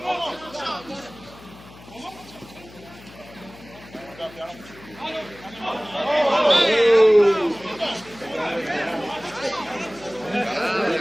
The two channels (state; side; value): noise; left; hum, 20 dB below the sound